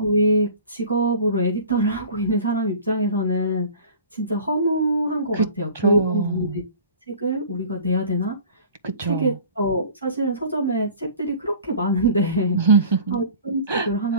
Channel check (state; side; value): inverted; both; correlation -0.44